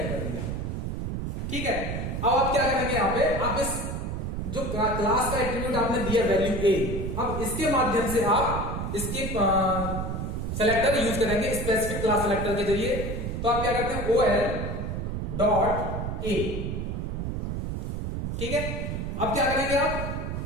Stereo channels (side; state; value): right; noise; rumble, 3 dB below the sound